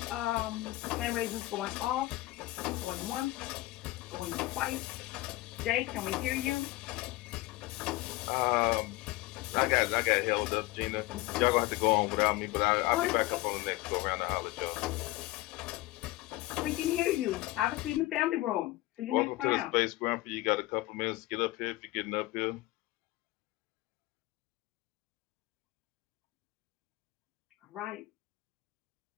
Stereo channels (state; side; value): quieter; right; 18.8 dB